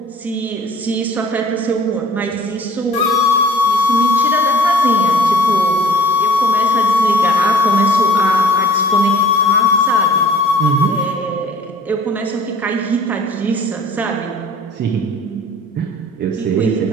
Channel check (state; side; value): normal; both; correlation 0.50